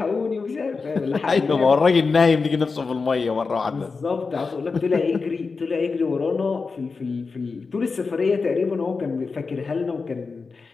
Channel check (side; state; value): right; quieter; 4.5 dB